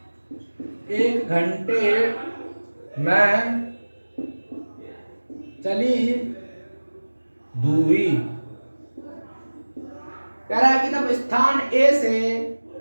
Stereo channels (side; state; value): both; inverted; correlation -1.00